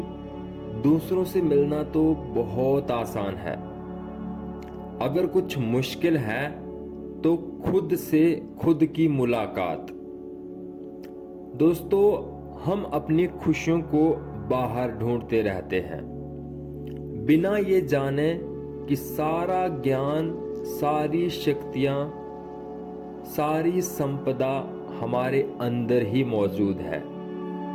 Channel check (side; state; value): both; identical; correlation 1.00